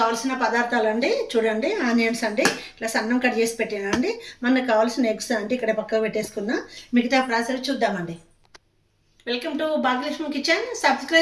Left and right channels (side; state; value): both; identical; correlation 1.00